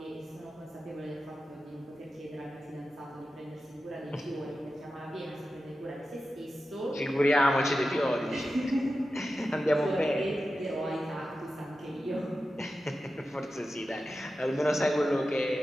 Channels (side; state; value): both; normal; correlation 0.92